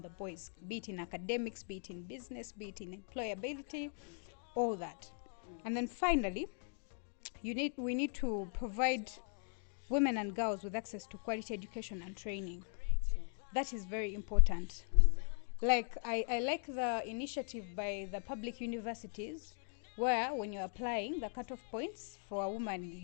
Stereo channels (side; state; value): right; silent; 51 dB below the other